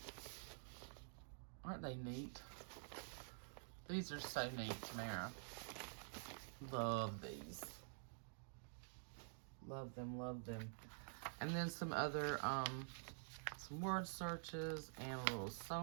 Aren't they neat? These are so neat, Tamara. Love these. Love them, love them. And then some other, some word searches and a little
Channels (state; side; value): silent; left; digital silence